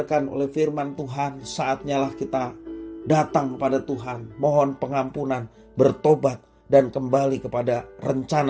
oleh firman Tuhan, saatnya lah kita datang kepada Tuhan, mohon pengampunan, bertobat dan kembali kepada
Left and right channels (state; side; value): identical; both; correlation 1.00